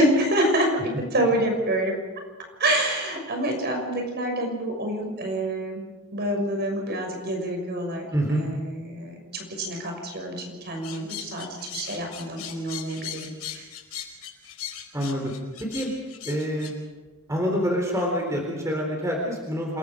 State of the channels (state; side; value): normal; both; correlation 0.31